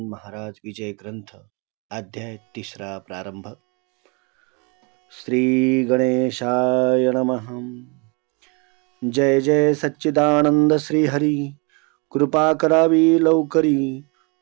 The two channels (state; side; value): quieter; left; 31.7 dB